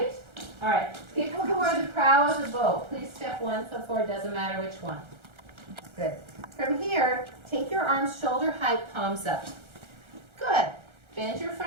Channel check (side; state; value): left; late; 1.3 ms